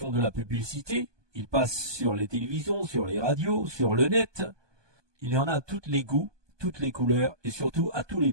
de la publicité, ils passent sur les télévisions, sur les radios, sur le net. Il y en a à tous les goûts, toutes les couleurs et surtout à tous les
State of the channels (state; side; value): late; left; 1.2 ms